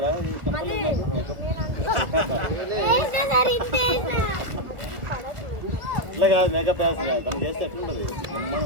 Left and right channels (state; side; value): late; left; 1.7 ms